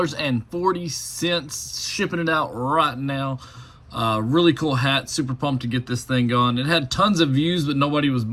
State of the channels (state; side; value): identical; both; correlation 1.00